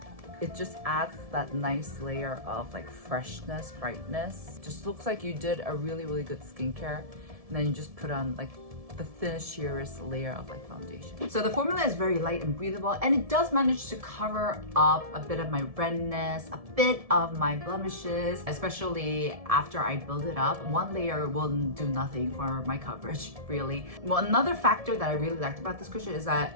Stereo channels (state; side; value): late; left; 1.7 ms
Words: It just adds that nice layer of like freshness, brightness. Just looks like you did a really good skincare, and then you just put on like the thinnest, sheerest layer of like foundation. So the formula is very light and breathable, and it does manage to cover up a bit of my redness, a bit of my blemishes, especially after I build it up. 1 layer will do nothing for my coverage, really. Well, another factor that I really liked about this cushion is